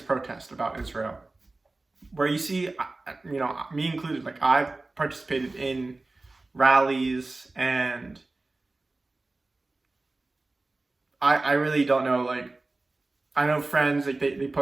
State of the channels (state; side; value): quieter; left; 3.2 dB